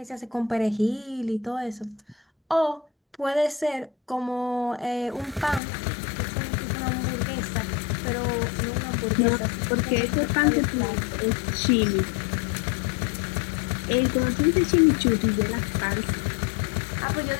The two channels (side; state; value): right; drops out; at 5.6 s